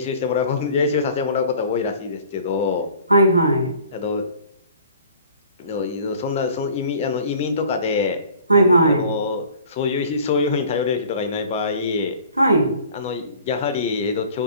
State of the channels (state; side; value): inverted; both; correlation -0.49